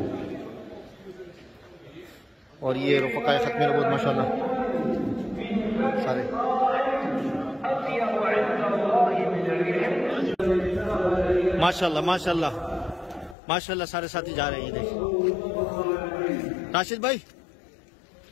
और ये रुफ़क़ाए ख़त्म नबूवत माशाअल्लाह सारे। माशाअल्लाह माशाअल्लाह माशाअल्लाह सारे साथी जा रहे हैं। ये देखिए राशिद भाई,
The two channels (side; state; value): right; drops out; at 13.4 s